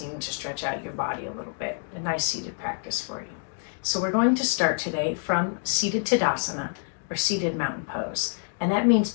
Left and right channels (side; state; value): right; silent; digital silence